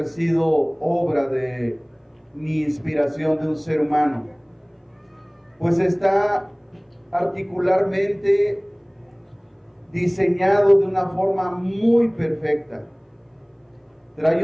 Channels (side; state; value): both; identical; correlation 1.00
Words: sido obra de ni inspiración de un ser humano, pues está particularmente diseñado de una forma muy perfecta. Trae